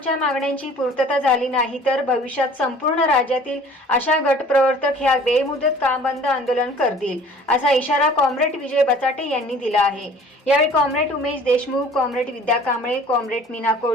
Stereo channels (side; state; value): both; normal; correlation 0.49